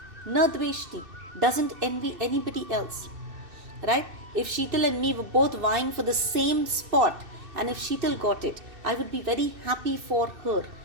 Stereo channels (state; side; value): late; left; 2.7 ms